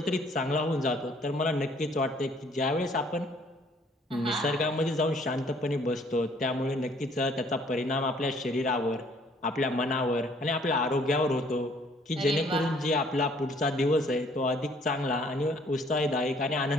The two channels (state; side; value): normal; both; correlation 0.60